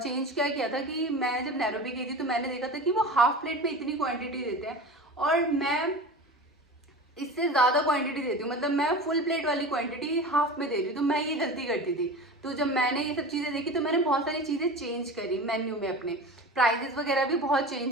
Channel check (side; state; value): both; normal; correlation 0.32